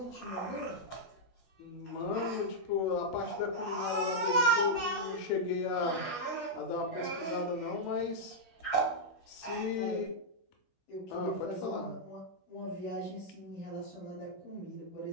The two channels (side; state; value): right; late; 16 ms